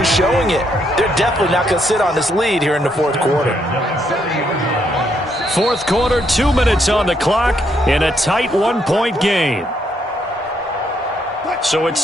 showing it. They're definitely not going to sit on this lead here in the fourth quarter. Fourth quarter, 2 minutes on the clock in a tight 1-point game. So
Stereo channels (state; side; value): normal; both; correlation 0.74